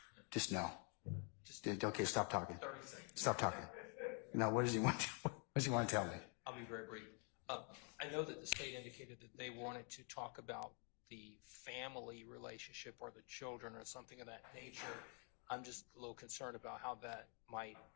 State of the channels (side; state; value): right; quieter; 38.8 dB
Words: just no. Okay, stop talking. 30 seconds. Stop talking. No, what does he want to tell me? I'll be very brief. I know that the state indicated that they wanted to talk about the family relationship or the children or something of that nature. I'm just a little concerned about how that might